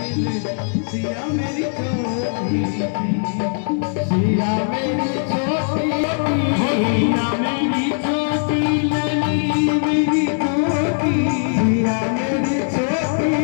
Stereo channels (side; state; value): right; silent; digital silence